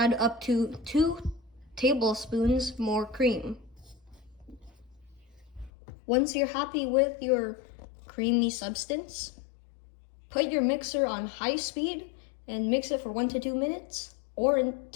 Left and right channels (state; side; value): drops out; right; at 5.7 s